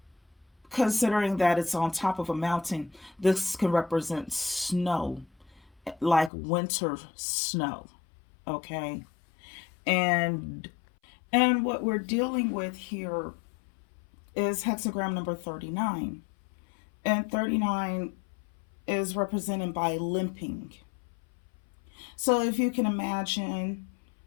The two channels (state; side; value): drops out; right; at 6.3 s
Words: considering that it's on top of a mountain, this can represent snow, like winter snow. Okay, and what we're dealing with here is hexagram number 39, and 39 is represented by limping. So if you can imagine,